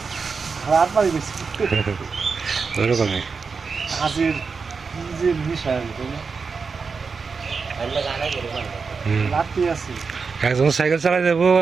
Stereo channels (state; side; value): quieter; left; 5.1 dB